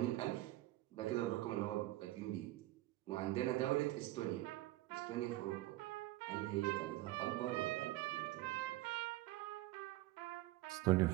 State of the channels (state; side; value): quieter; left; 17.2 dB